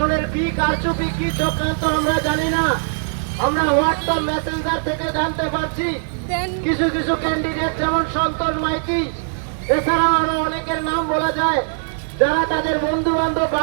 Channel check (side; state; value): left; silent; digital silence